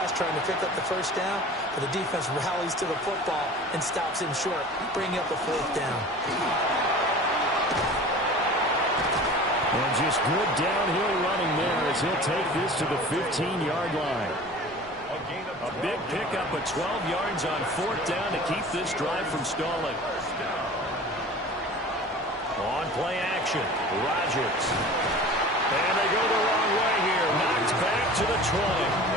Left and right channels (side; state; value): both; normal; correlation 0.40